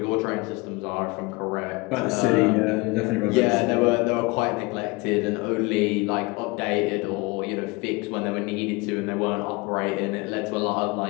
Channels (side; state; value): right; quieter; 25.5 dB